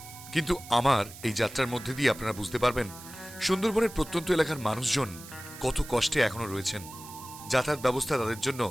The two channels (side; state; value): right; noise; hiss, 16 dB below the sound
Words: কিন্তু আমার এই যাত্রার মধ্যে দিয়ে আপনারা বুঝতে পারবেন সুন্দরবনের প্রত্যন্ত এলাকার মানুষজন কত কষ্টে এখনো রয়েছেন। যাতায়াত ব্যবস্থা তাদের জন্য